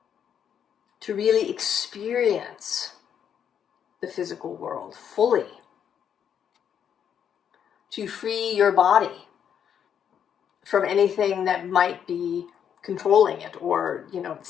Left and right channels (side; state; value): right; quieter; 8.5 dB